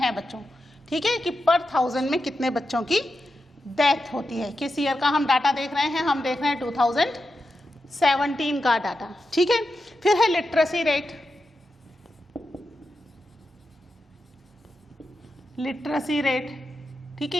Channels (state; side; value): normal; both; correlation 0.89